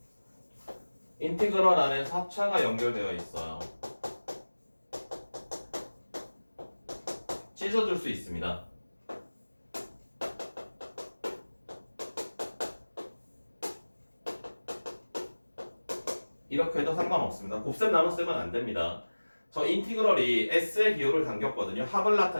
인티그럴 안에 합차가 연결되어 있어요. 찢어줄 수 있습니다. 이렇게 해도 상관없습니다. 곱셈 나눗셈은 안 됩니다. 저 인티그럴이 S의 기호를 당겼거든요. 합을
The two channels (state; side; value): inverted; both; correlation -1.00